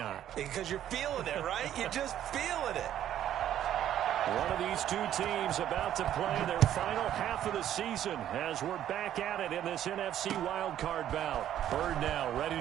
Because you're feeling it, right? You're just feeling it. One of these two teams about to play their final half of the season as we're back at it in this NFC wildcard bout. Bird now ready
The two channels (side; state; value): left; quieter; 11.2 dB